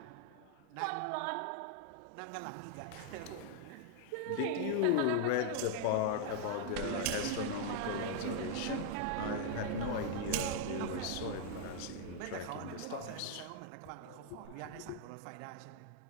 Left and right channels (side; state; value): both; different; correlation -0.01